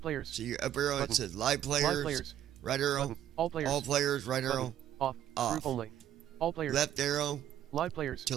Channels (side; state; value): left; quieter; 11.3 dB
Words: players. So your up arrow, Button. it says live players. Live players. Right arrow, Button. All players. all players, right Button. arrow, Off. off. Group only. All players. Left arrow Live players.